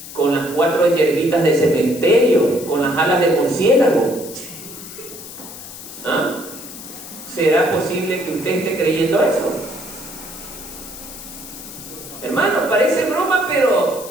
con las 4 hierbitas de cementerio, con las alas de murciélago. ¿Ah? ¿Será posible que usted esté creyendo eso? Hermano, parece broma,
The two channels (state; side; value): noise; left; hiss, 13 dB below the sound